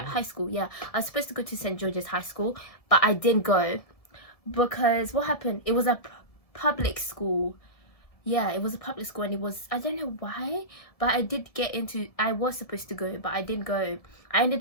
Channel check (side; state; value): right; late; 1.7 ms